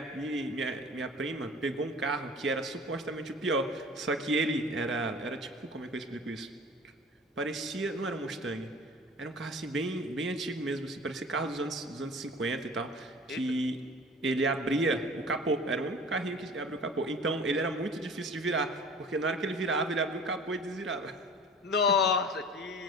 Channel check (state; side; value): normal; both; correlation 0.42